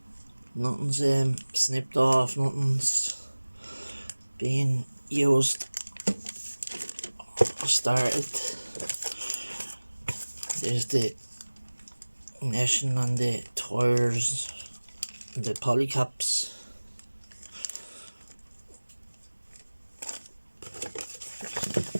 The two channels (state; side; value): inverted; both; correlation -1.00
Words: Nothing's snipped off, nothing's being used or started. There's the neshing on the tires, the polycaps.